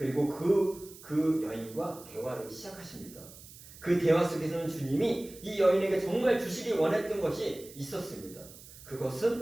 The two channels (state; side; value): noise; right; hiss, 18 dB below the sound